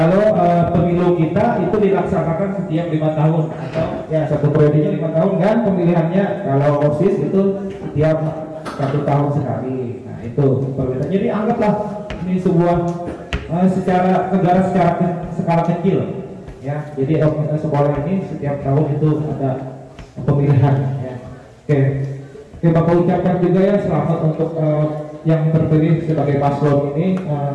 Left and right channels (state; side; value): identical; both; correlation 1.00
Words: pemilu kita itu dilaksanakan setiap 5 tahun atau ya satu periodenya 5 tahun kan pemilihannya. Kalau OSIS itu setiap 1 tahun sekali. Nah itu perbedaan. Jadi anggaplah ini sebuah secara negara secara skala kecil ya. Jadi sekolah ini setiap tahun itu ada pemilihan ya. Oke, Bapak ucapkan juga ya selamat untuk yang terpilih sebagai paslon ini.